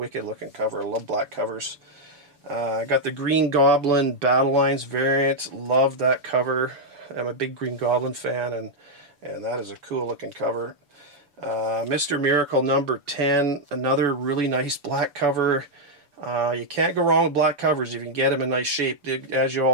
looking cover. I love black covers. I got the Green Goblin Battle Lines variant. Love that cover. I'm a big Green Goblin fan, and that is a cool looking cover. Mr. Miracle #10. Another really nice black cover. You can't go wrong with black covers if you can get them in nice shape. As you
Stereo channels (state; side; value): late; left; 6.9 ms